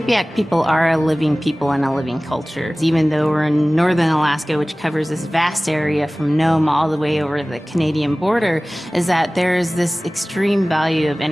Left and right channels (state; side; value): normal; both; correlation 0.98